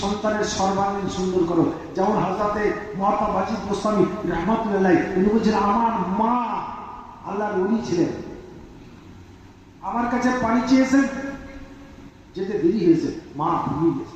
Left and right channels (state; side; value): identical; both; correlation 1.00